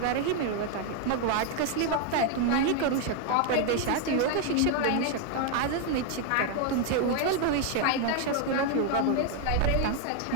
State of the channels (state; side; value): different; both; correlation 0.01